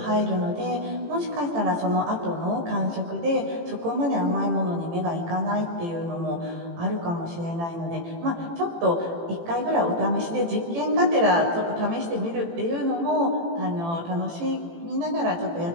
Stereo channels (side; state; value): left; late; 18 ms